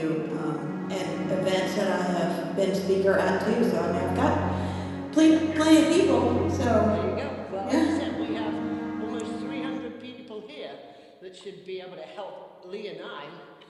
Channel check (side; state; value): both; identical; correlation 1.00